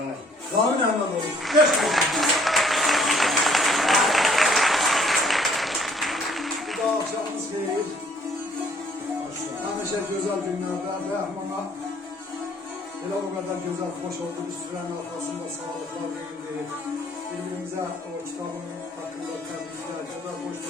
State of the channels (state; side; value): normal; both; correlation 0.60